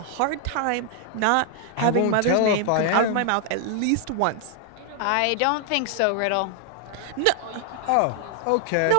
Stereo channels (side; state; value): both; different; correlation 0.00